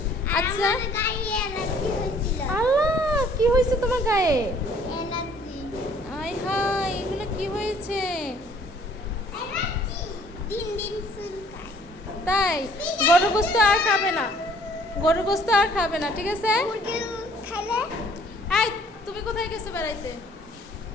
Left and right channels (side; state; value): both; normal; correlation 0.58